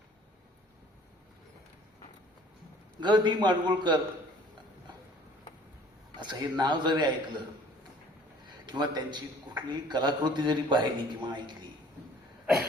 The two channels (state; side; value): normal; both; correlation 0.53